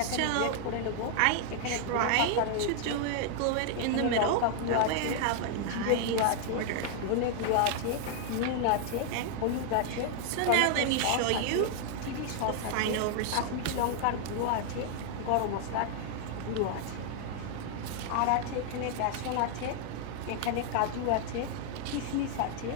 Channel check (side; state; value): both; different; correlation 0.00